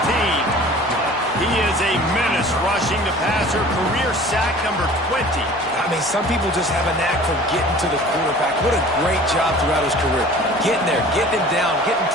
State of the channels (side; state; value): both; normal; correlation 0.45